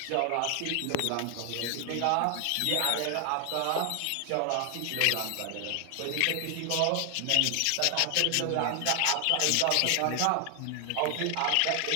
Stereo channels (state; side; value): different; both; correlation 0.00